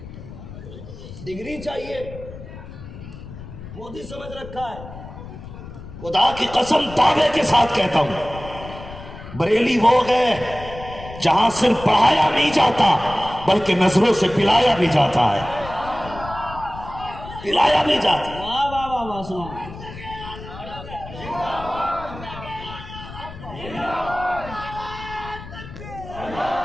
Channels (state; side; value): noise; left; rumble, 13 dB below the sound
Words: ڈگری چاہیے، مودی سمجھ رکھا ہے۔ خدا کی قسم دعوے کے ساتھ کہتا ہوں، بریلی وہ گئے جہاں صرف پڑھایا نہیں جاتا بلکہ نظروں سے پلایا بھی جاتا ہے، پلایا بھی جاتا ہے۔ واہ واہ واہ واہ سنا۔